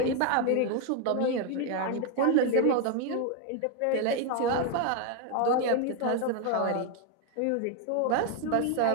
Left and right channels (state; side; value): different; both; correlation 0.01